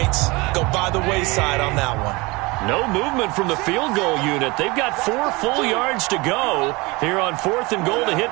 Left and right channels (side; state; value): left; quieter; 24.4 dB